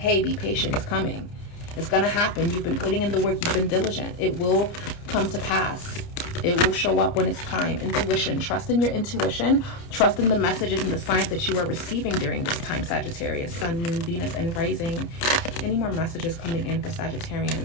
be patient. It's coming. It's gonna happen. You've been putting in the work. You've been diligent. It will come to pass. It will show up when it's time. Intuition. Trust in your intuition. Trust in the messages and the signs that you are receiving during this time, Sagittarius. Sun, Moon, Venus, and Rising. Any more messages coming in for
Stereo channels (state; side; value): late; right; 29 ms